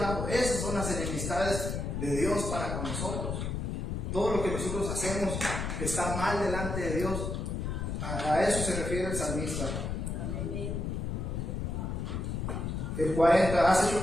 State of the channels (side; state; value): left; noise; rumble, 3 dB below the sound